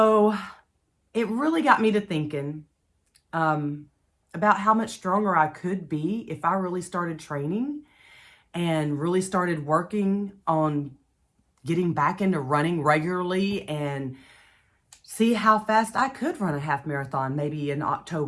it really got me to thinking about how much stronger I could be if I really started training and really started working on getting back into running regularly and see how fast I could run a half marathon, maybe in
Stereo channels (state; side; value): identical; both; correlation 1.00